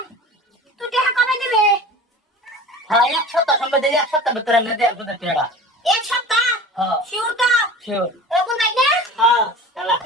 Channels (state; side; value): normal; both; correlation 0.38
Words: তুই টাকা কবে দিবে হ্যাঁ এক সপ্তাহ সময় দিই এক সপ্তাহ ভিতরে আমি দেব সুদের টাকা এক সপ্তাহ হ্যাঁ শিওর তো শিওর এরকম নাই না হ্যাঁ খালা